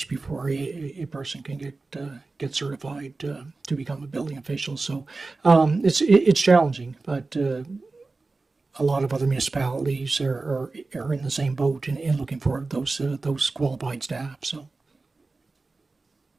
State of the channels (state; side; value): quieter; left; 3.7 dB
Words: before a person can get certified to become a building official. So it's challenging, but a lot of other municipalities are in the same boat in looking for those qualified staff. So.